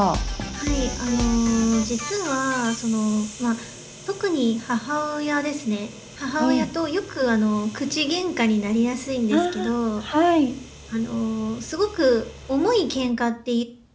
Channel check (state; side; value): identical; both; correlation 1.00